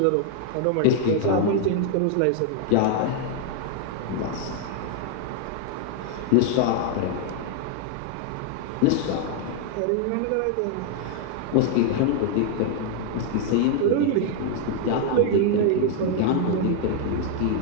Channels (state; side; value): different; both; correlation 0.00